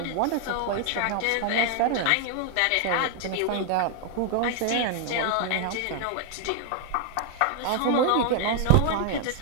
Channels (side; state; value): both; different; correlation 0.00